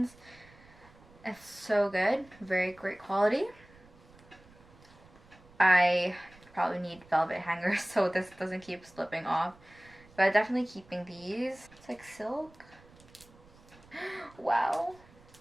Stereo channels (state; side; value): noise; right; rumble, 25 dB below the sound